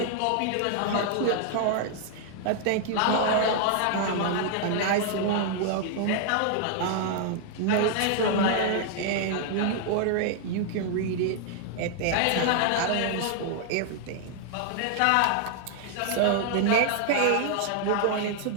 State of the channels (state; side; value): different; both; correlation 0.00